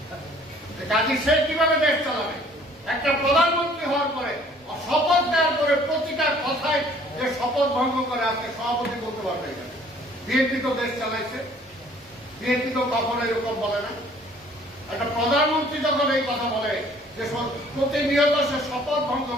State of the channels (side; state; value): both; normal; correlation 0.56